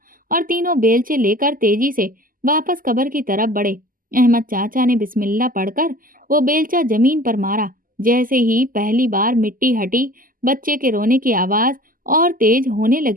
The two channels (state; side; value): late; left; 0.41 ms